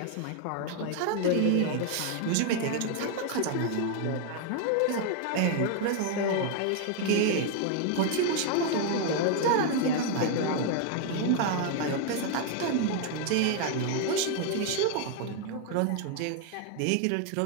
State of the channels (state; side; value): different; both; correlation 0.00